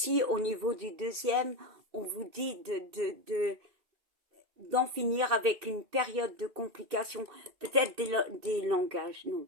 au niveau du deuxième, on vous dit d'en finir avec une période de complication. Peut-être des langages, non.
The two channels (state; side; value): late; left; 2.6 ms